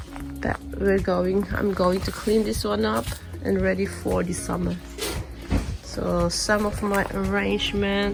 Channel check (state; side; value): identical; both; correlation 1.00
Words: but I'm going to clean this one up and ready for the summer. So some of my